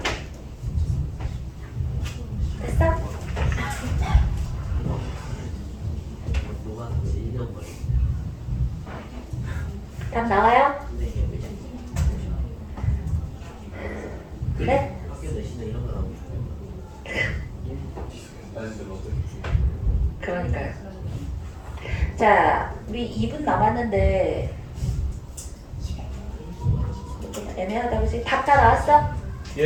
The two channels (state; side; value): identical; both; correlation 1.00